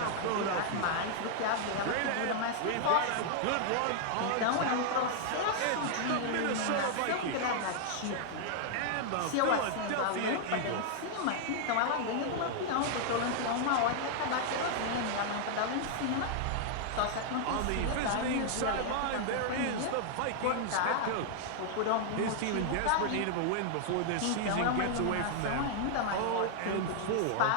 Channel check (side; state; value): both; different; correlation -0.01